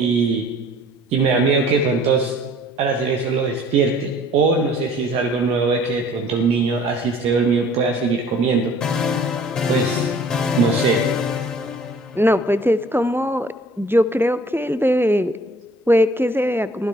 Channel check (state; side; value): normal; both; correlation 0.53